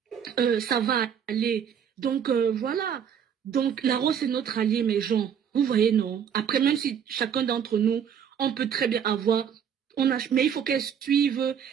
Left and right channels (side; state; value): left; quieter; 8.1 dB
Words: ça va aller. Donc voilà. Donc la rose c'est notre allié, mes gens. Vous voyez, non? Après, même si chacun d'entre nous, on peut très bien avoir... mais il faut qu'elle suive...